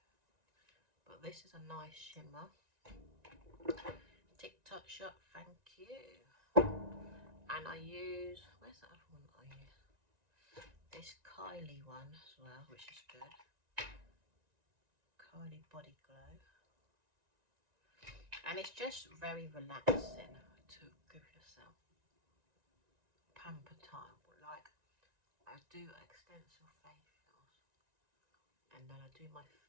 But this is a nice shimmer. TikTok shop, thank you. And I use, where's the other one that I use? This Kylie one as well, which is good. Kylie Body Glow. And it's just very relaxing to give yourself pamper time. Like, I do extensive facials, and then I do my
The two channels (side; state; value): left; late; 1.9 ms